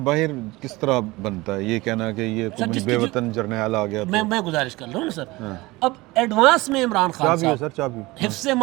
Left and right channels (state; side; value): quieter; left; 21.2 dB